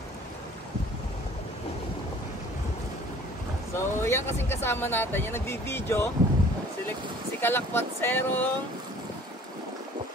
So, yan kasing kasama natin, yung nagbi-video, si Kalakwatserong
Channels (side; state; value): both; normal; correlation 0.51